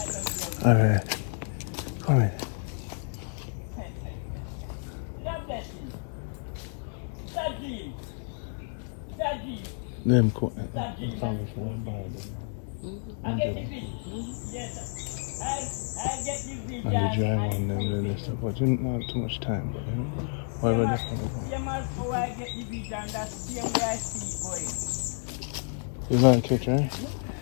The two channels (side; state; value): right; silent; 58 dB below the other